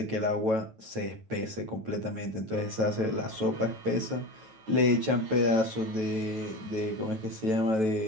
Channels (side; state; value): left; late; 9.2 ms